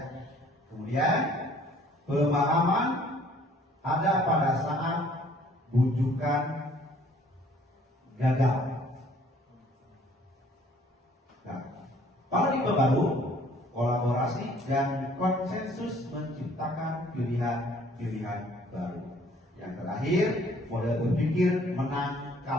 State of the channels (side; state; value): both; normal; correlation 0.58